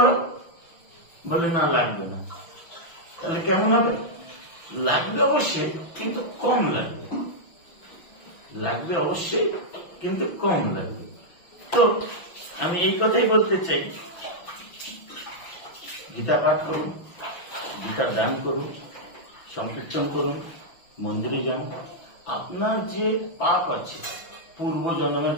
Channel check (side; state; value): right; late; 6.0 ms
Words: বলে না লাগবে না। তাহলে কেমন হবে? লাগবে অবশ্যই, কিন্তু কম লাগবে। লাগবে অবশ্যই, কিন্তু কম লাগবে। তো আমি এই কথাই বলতে চাই, গীতা পাঠ করুন, গীতার দান করুন, সংকীর্তন করুন, মন্দিরে যান। আপনার যে পাপ আছে, পূর্ব জন্মের